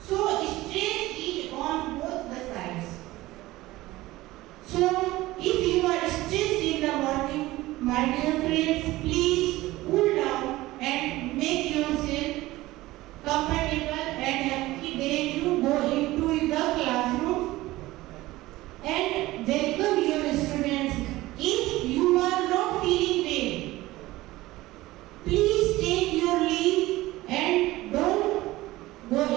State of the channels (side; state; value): left; quieter; 18.0 dB